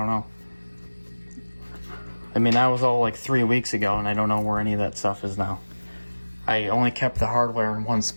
know. I mean, that was all like 3 weeks ago, and I don't know where any of that stuff is now. I only kept the hardware in one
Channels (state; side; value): inverted; both; correlation -1.00